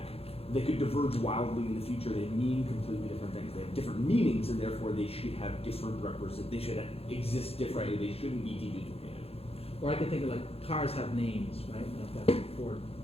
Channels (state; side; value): late; right; 0.29 ms